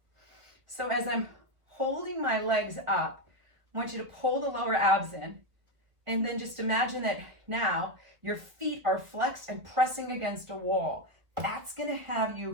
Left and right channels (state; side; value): late; left; 1.7 ms